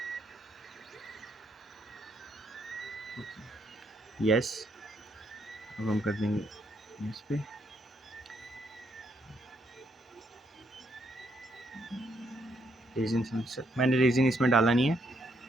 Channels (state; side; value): normal; both; correlation 0.74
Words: यस, अब हम कर देंगे इस पे। रेजिन सेंसर, मैंने रेजिन इसमें डाला नहीं है,